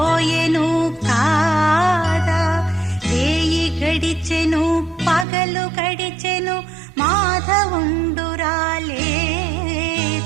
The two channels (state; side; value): drops out; left; at 5.2 s